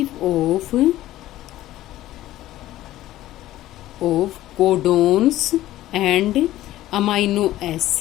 of codons and amino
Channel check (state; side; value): quieter; right; 14.8 dB